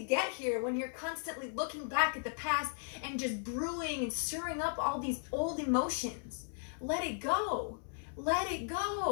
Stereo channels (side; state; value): right; silent; 54 dB below the other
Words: get here when you're constantly looking back at the past and just brewing and stirring up all these old emotions? Let it go. Let it